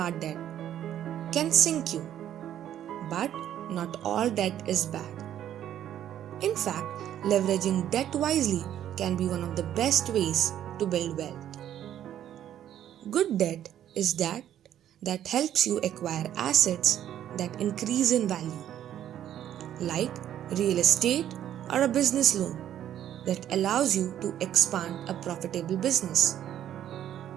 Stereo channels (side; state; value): left; quieter; 11.0 dB